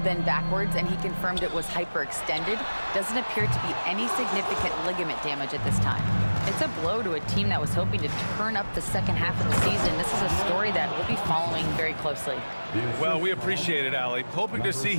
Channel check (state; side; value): inverted; both; correlation -1.00